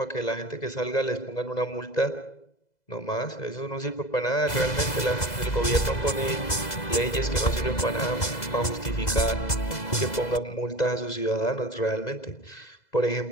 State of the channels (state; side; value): late; right; 2.0 ms